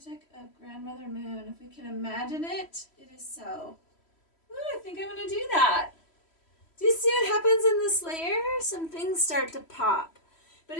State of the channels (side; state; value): right; late; 3.1 ms